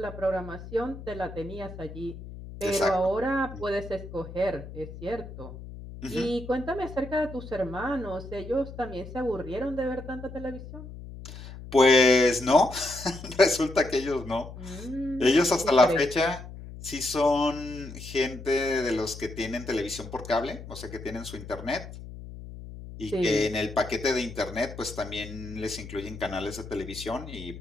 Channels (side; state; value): left; noise; hum, 13 dB below the sound